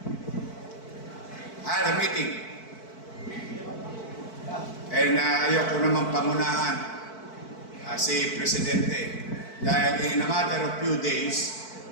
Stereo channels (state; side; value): late; right; 4.5 ms